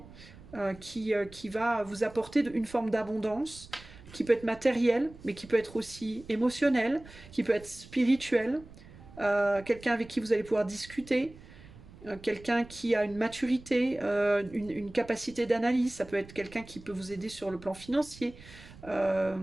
qui va vous apporter une forme d'abondance, qui peut être matérielle, mais qui peut être aussi émotionnelle, qui peut être spirituelle, quelqu'un avec qui vous allez pouvoir discuter, quelqu'un qui a une maturité, une capacité d'analyse, ça peut être quelqu'un qui peut vous aider sur le plan financier,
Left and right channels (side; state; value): right; noise; rumble, 19 dB below the sound